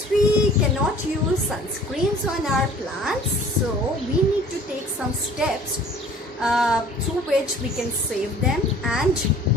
we cannot use sunscreens on our plants, so we need to take some steps through which we can save them, and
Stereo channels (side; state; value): both; normal; correlation 0.49